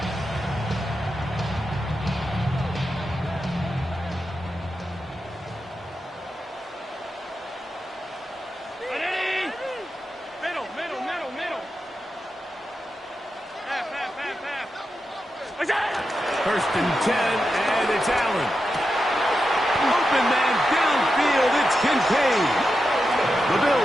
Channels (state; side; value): normal; both; correlation 0.89